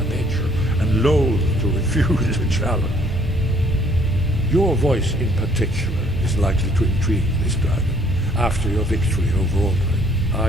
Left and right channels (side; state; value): both; normal; correlation 0.62